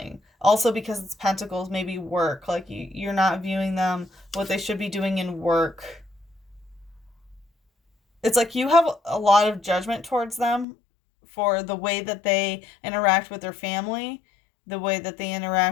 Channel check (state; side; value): drops out; right; at 10.7 s